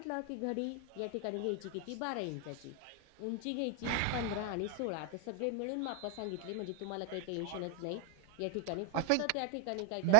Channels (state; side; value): different; both; correlation 0.01